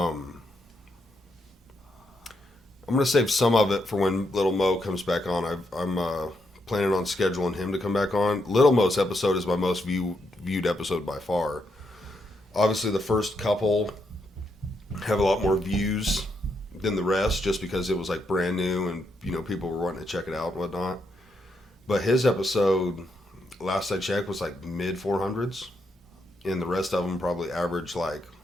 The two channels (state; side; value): normal; both; correlation 0.79